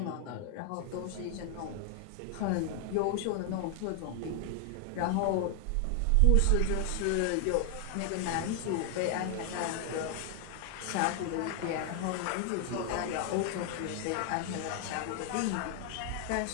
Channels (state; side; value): different; both; correlation 0.00